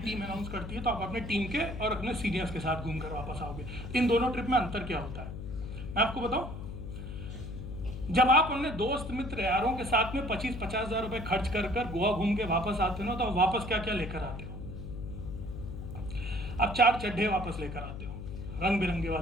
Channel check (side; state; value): left; noise; hum, 8 dB below the sound